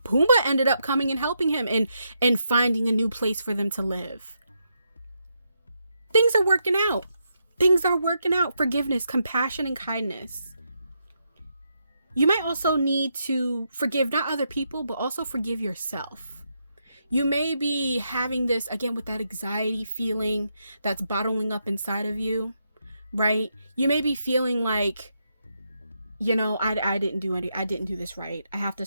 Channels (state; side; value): inverted; both; correlation -0.81